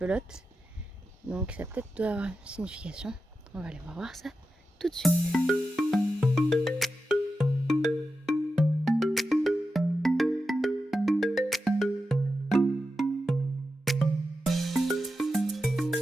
Donc ça peut-être doit avoir une signification. On va aller voir ça tout de suite.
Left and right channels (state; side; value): normal; both; correlation 0.90